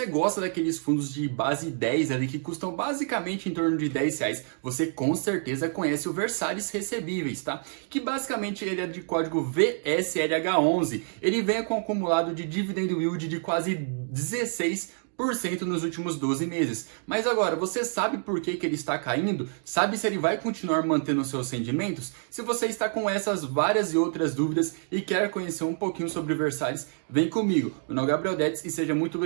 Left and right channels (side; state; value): left; silent; 60 dB below the other